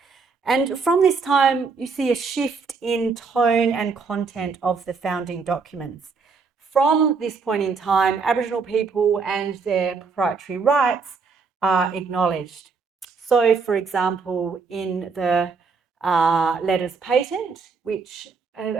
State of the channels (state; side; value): quieter; left; 4.9 dB